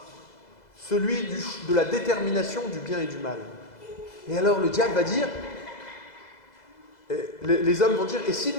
celui de la détermination du bien et du mal. » Et alors le diable va dire, les hommes vont dire, et si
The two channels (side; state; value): right; late; 2.0 ms